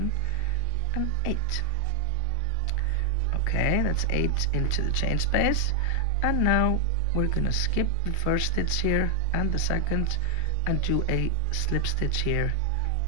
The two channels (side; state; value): both; different; correlation 0.00